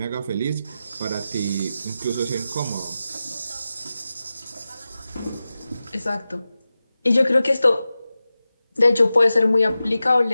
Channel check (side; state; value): both; inverted; correlation -0.94